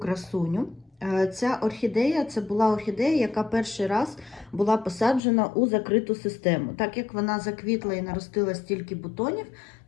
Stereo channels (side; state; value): right; drops out; at 5.2 s